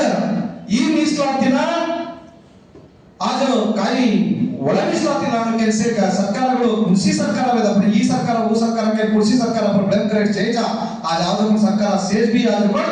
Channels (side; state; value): both; identical; correlation 1.00